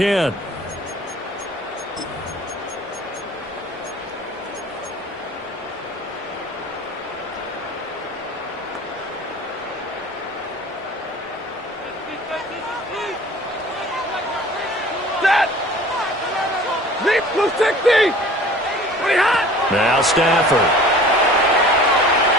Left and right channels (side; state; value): both; normal; correlation 0.46